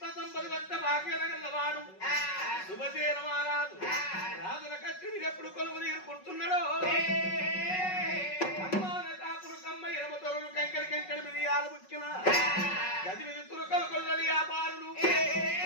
సంపది వద్ద భాగ్యలగల్లవాడు శుభసేన మహారాజు రాజుల కచ్చుని ఎప్పుడు కొలువు నీరు కుడుతున్నాడో అమ్మాన కాపులు కమ్మ ఎనమ తొరలు కంకడి కంకడి మిరియాలు ముక్కిన గది మీద తురకలు కొల్లని వ్యాపారులు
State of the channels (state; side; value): late; right; 5.4 ms